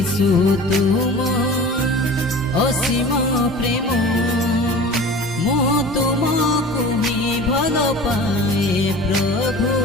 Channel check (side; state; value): both; normal; correlation 0.38